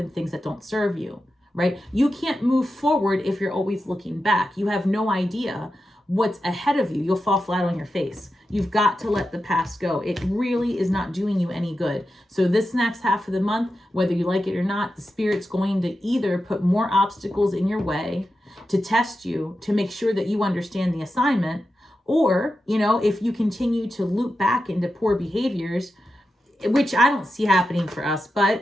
things that don't serve you, right? You can't move forward if you're always looking back. You have no idea what's ahead of you. You'll fall flat on your face. You've got to let the past go. It really is not doing you any good. So this next half of the month, whether you like it or not, the Spirit's going to either put more obstacles in your way to test you, to make sure that you understand the assignment, or, you know, if you continue to loop back into poor behaviors, which I don't see happening for us,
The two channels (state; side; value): normal; both; correlation 0.90